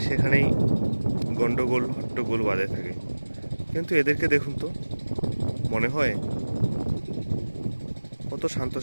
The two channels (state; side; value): inverted; both; correlation -1.00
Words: সেখানেই গন্ডগোল হট্টগোল বাঁধে থাকে, কিন্তু এদেরকে দেখুন তো, মনে হয় কত